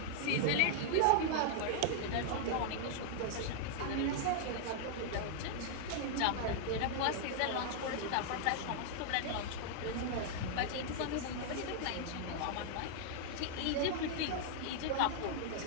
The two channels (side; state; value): both; different; correlation -0.01